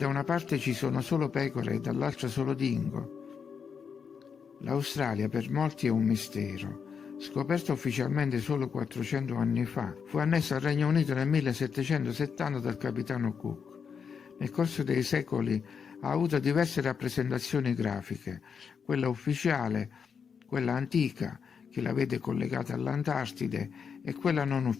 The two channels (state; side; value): quieter; right; 6.5 dB